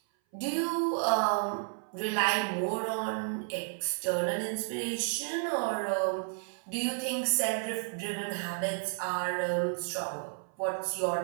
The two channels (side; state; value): left; silent; 56 dB below the other